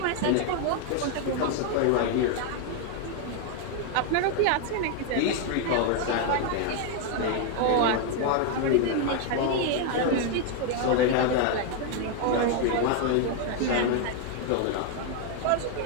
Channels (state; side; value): different; both; correlation 0.01